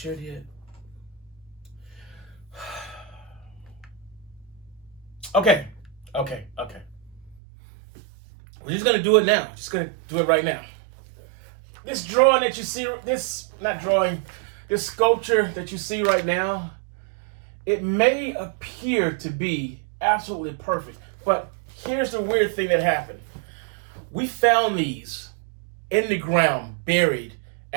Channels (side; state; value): left; drops out; at 7.4 s